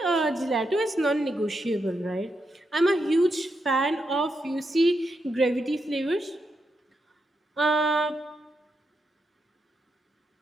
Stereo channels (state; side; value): normal; both; correlation 0.84